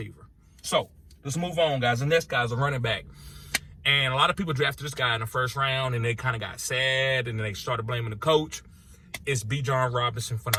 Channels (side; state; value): both; identical; correlation 1.00